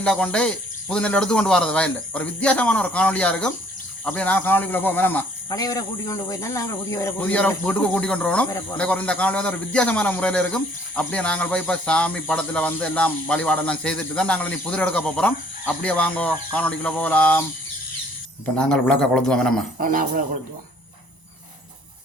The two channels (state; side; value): late; right; 1.0 ms